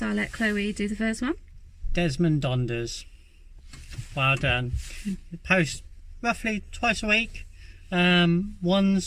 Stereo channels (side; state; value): both; identical; correlation 1.00